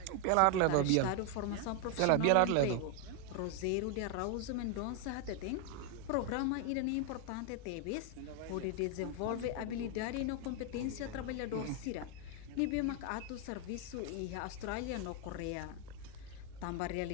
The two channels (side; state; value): both; different; correlation 0.01